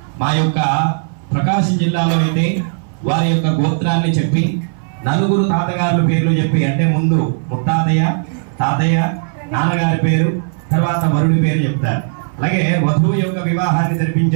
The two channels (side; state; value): left; silent; 60 dB below the other